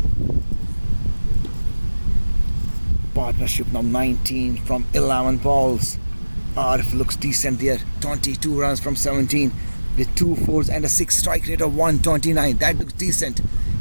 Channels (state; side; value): inverted; both; correlation -1.00